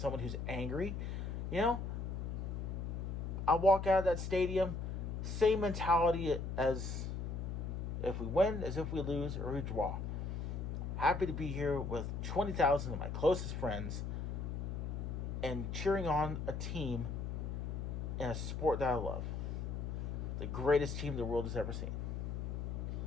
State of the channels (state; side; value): noise; left; hum, 3 dB below the sound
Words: who's angry. You know, I walk out of that stadium, same mentality as if we win, as if we lose, or we draw. Happy to be here with 20,000 of my closest friends and cheering on a team in a sport that I love. The greatest team the world has ever seen.